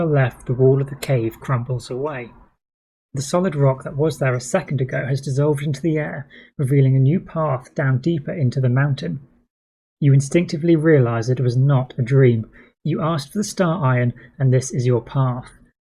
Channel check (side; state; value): both; identical; correlation 1.00